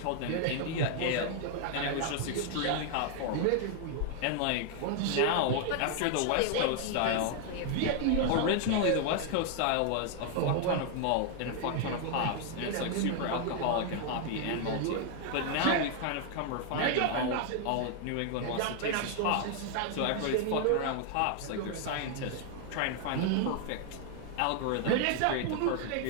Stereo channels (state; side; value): different; both; correlation 0.00